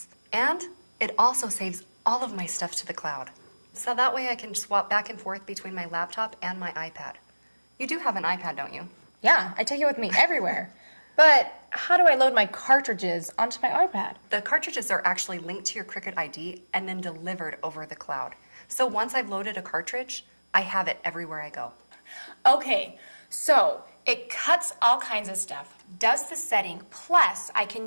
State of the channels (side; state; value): both; inverted; correlation -1.00